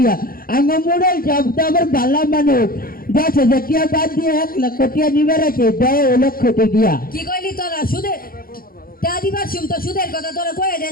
আমার মুন্ডল সব তো আমার ভালো মানুষ, 10,000 টিহা বাদ দিয়ে 1,00,000 টিহা নিবে রাখে, 10,00,000 টিহা। কি কইলি তোরা? সুদে তা দিবার শুম তো সুদের কথা তোরা কয়ে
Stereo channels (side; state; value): right; late; 0.42 ms